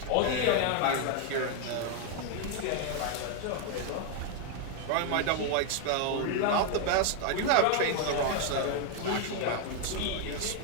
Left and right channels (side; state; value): both; different; correlation 0.00